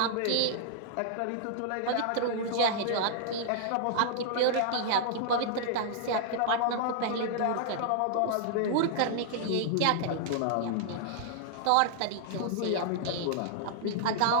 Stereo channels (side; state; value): both; different; correlation -0.01